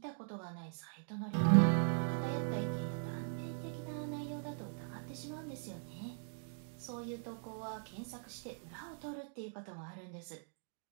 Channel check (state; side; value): silent; left; digital silence